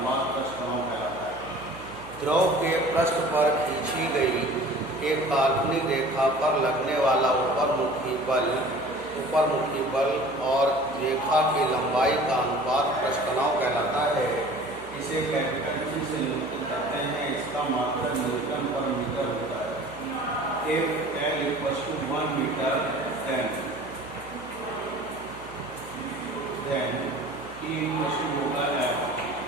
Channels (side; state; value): right; noise; hum, 21 dB below the sound